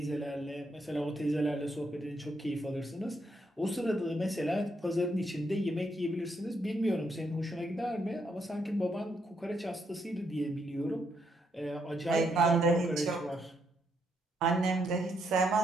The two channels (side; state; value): both; normal; correlation 0.76